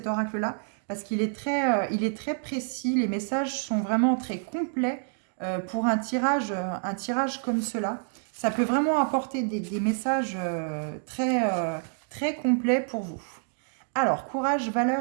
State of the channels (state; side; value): silent; left; digital silence